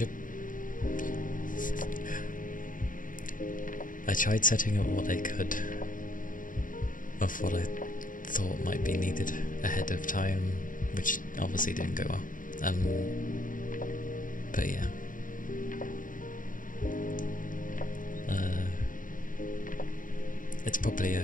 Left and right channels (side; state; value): right; late; 0.39 ms